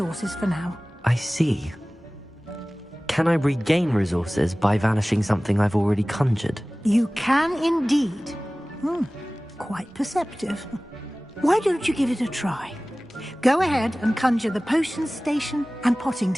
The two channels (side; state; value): both; normal; correlation 0.98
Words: for now. I see. Can I regain resources by vanishing something I've already conjured? You can indeed. Quite perceptive. Why don't you give it a try? Go ahead and conjure the potion station and potting